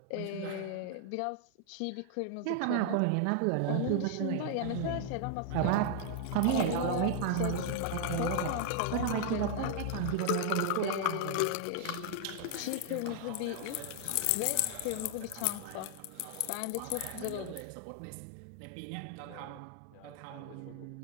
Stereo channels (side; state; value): both; different; correlation 0.00